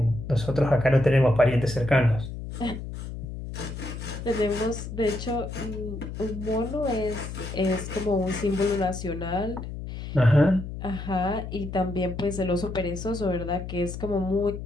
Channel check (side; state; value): left; noise; hum, 8 dB below the sound